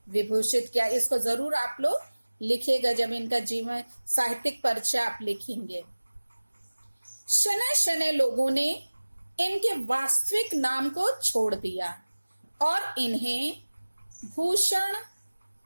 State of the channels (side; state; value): both; inverted; correlation -1.00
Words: विभूषित किया। इसको जरूर आप लोग लिखिएगा जब इनका जीवन साहित्यिक परिचय आप लिखेंगे। शनै शनै लोगों ने इनके वास्तविक नाम को छोड़ दिया और इन्हें भूषण